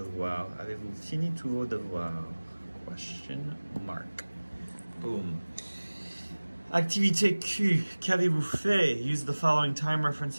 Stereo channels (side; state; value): both; inverted; correlation -1.00